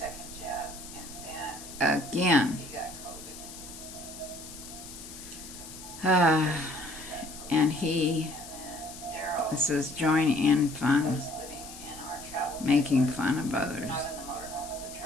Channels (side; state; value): left; noise; hiss, 14 dB below the sound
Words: again. And this is join in fun, making fun of others.